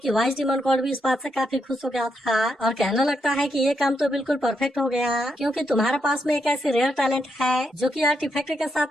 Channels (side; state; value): both; normal; correlation 0.80